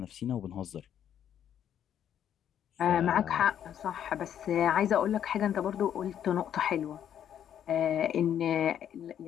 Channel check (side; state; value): right; quieter; 9.7 dB